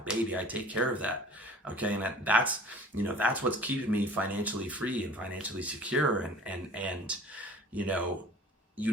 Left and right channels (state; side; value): normal; both; correlation 0.46